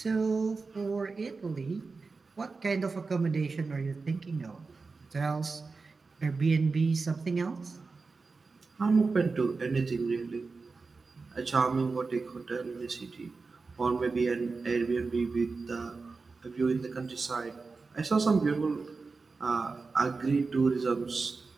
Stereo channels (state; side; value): quieter; left; 4.2 dB